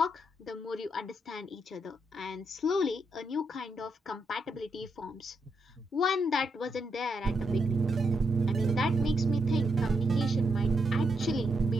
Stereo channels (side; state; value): both; normal; correlation 0.81